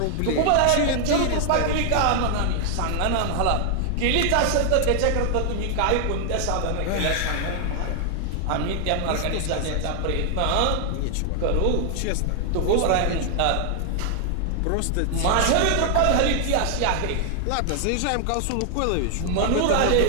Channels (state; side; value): different; both; correlation 0.00